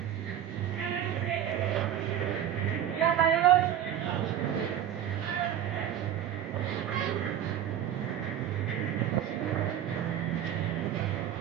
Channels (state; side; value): quieter; left; 10.3 dB